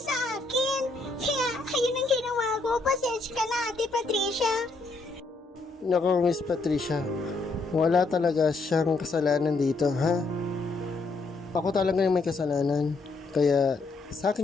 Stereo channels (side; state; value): right; quieter; 3.5 dB